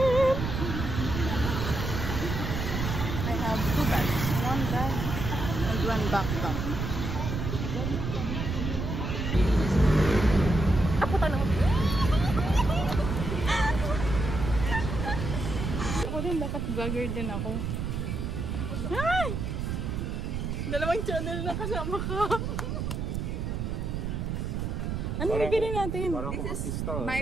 I have 2 bags. 1 bag and 1 backpack. Ako tanong. Ako din, dapat vlogger din ako. Ay! 2 channel na kasama ka. Ano bibili natin? This is my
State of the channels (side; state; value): right; noise; rumble, 3 dB below the sound